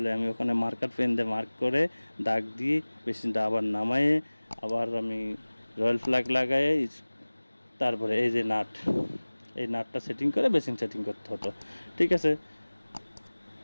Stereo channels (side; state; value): both; inverted; correlation -1.00